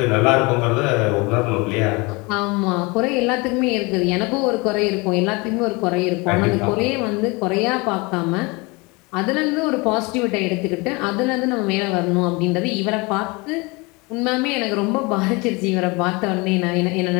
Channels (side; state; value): right; quieter; 26.5 dB